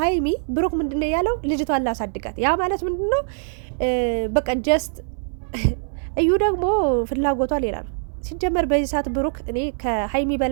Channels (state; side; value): silent; left; 61 dB below the other